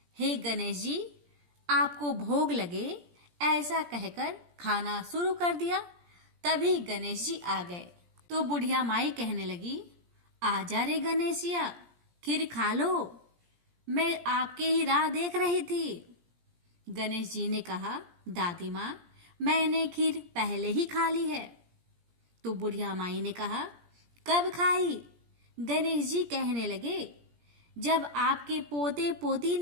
हे गणेश जी, आपको भोग लगे, ऐसा कहकर खाना शुरू कर दिया। तभी गणेश जी आ गए तो बुढ़िया माई कहने लगी, आजा रे गणेशिया, खीर खा लो, मैं आपके ही राह देख रही थी। गणेश जी ने कहा, दादी माँ, मैंने खीर पहले ही खा ली है। तो बुढ़िया माई ने कहा, कब खाई? गणेश जी कहने लगे, जब आपके पोते पोती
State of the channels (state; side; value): late; left; 17 ms